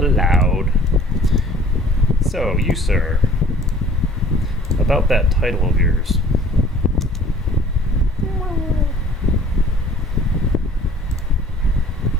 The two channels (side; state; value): both; normal; correlation 0.52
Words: So, you, sir, about that title of yours.